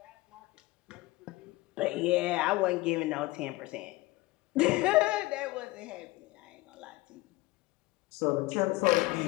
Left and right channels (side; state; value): right; quieter; 20.2 dB